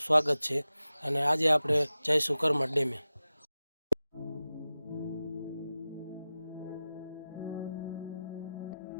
है। अने आज आपणे जईशुं करमठ डेमे।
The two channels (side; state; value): both; inverted; correlation -0.94